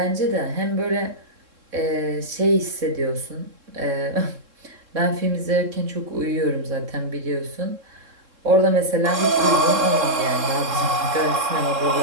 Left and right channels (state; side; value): late; left; 3.7 ms